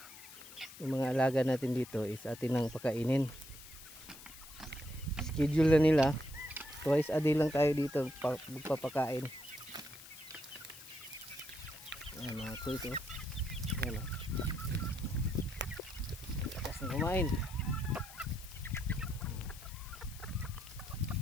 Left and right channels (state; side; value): noise; left; hiss, 16 dB below the sound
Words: yung mga alaga natin dito is atin nang pakainin. Schedule na nila, twice a day lang tayo dito magpapakain. Ayan mga kuys, oh. Ayan, oh. Lakas na kumain.